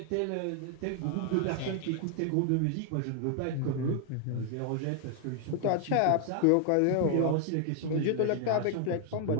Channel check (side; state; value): both; different; correlation 0.00